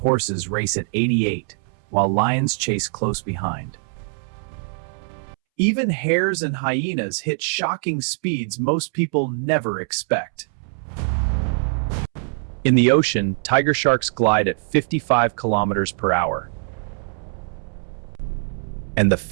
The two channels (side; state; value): left; silent; 64 dB below the other